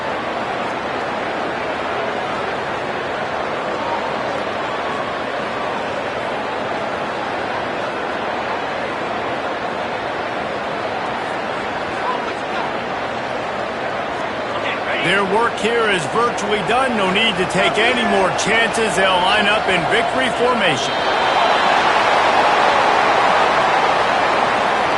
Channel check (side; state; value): both; identical; correlation 1.00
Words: Their work here is virtually done. No need to take any more chances. They'll line up in victory formation.